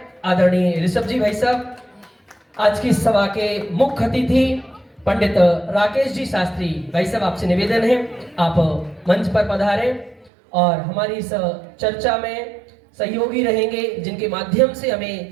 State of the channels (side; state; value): left; drops out; at 10.3 s